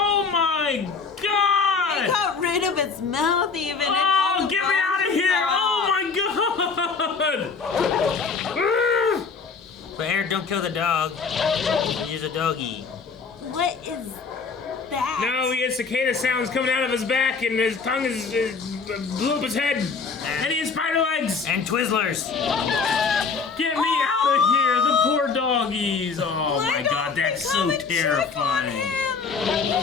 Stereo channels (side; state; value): right; quieter; 5.0 dB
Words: my God! it got rid of its mouth even. Oh, get me out of here! Oh my god! But Aaron, don't kill the dog. He's a doggy. What is that? No, he has cicada sounds coming out of his back, and his tongue is blew up his head. And he has spider legs! And Twizzlers! Get me out of here! The poor doggies! Oh my god, that's so terrifying.